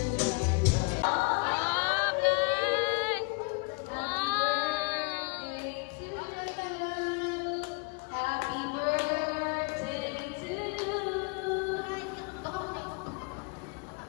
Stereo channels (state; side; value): quieter; right; 30.4 dB